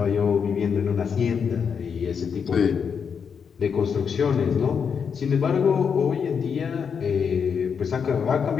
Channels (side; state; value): right; quieter; 6.6 dB